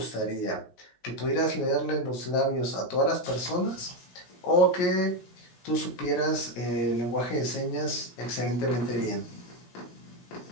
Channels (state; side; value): late; right; 17 ms